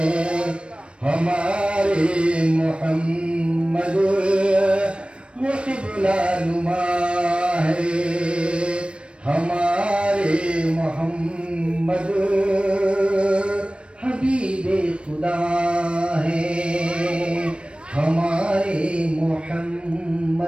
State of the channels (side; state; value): left; late; 0.058 ms